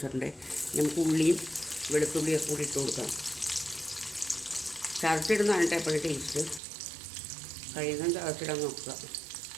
നമുക്ക് ഉള്ളിയും വെളുത്തുള്ളിയൊക്കെ കൂടി ഇട്ട് കൊടുക്കാം. ചതച്ചിടുന്നതാണ് കേട്ടോ എപ്പോഴും ടേസ്റ്റ്. കഴിയുന്നതും ചതച്ചിടാൻ നോക്കുക.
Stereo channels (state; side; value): drops out; left; at 6.6 s